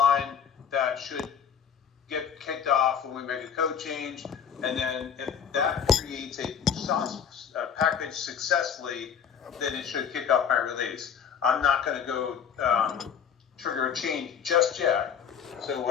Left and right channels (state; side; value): quieter; right; 7.6 dB